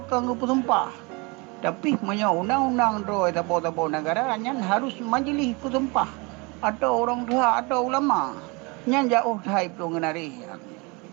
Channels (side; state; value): left; quieter; 28.2 dB